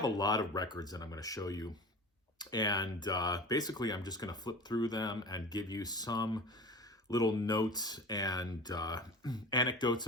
a lot of records that I'm going to show you, and basically I'm just going to flip through them and give you some little notes and anecdotes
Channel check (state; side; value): normal; both; correlation 0.35